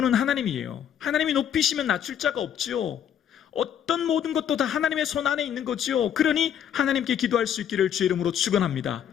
하나님이에요. 하나님이 높이시면 낮출 자가 없죠. 어떤 모든 것도 다 하나님의 손 안에 있는 거죠. 그러니 하나님께 기도할 수 있기를 주의 이름으로 축원합니다.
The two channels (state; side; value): quieter; right; 9.3 dB